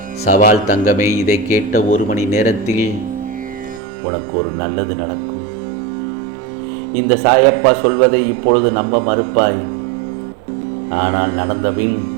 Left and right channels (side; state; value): left; drops out; at 3.8 s